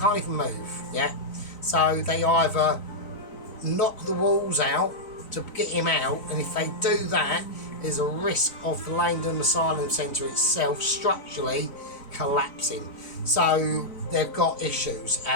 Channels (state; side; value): late; right; 3.9 ms